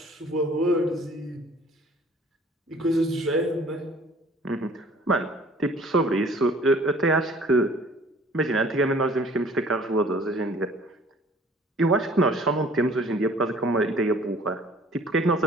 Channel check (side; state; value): both; normal; correlation 0.53